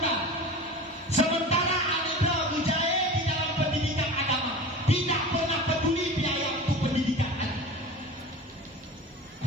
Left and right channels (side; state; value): both; normal; correlation 0.33